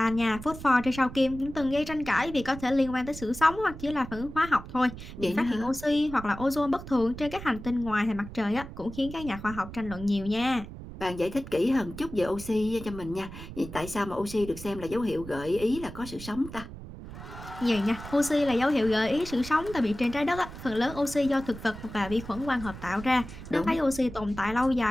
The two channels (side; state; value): right; noise; rumble, 12 dB below the sound